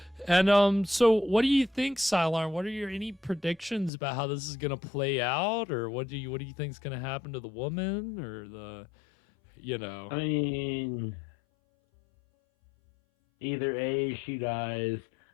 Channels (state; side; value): drops out; right; at 3.9 s